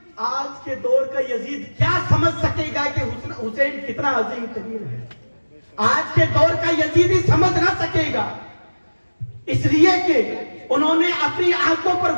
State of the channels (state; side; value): inverted; both; correlation -1.00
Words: آج کے دور کا یزید کیا سمجھ سکے گا کہ حسین کتنا عظیم ترین ہے؟ آج کے دور کا یزید ہی سمجھ نہ سکے گا، اس لیے کہ انہوں نے اپنی آنکھوں پر